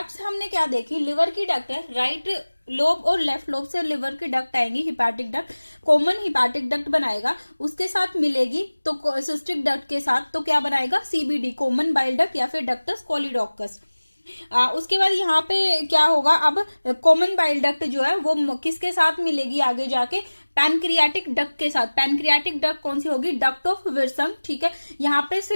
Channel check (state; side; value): inverted; both; correlation -1.00